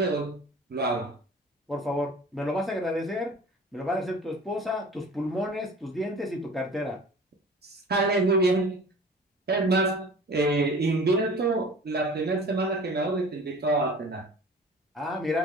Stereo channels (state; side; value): normal; both; correlation 0.43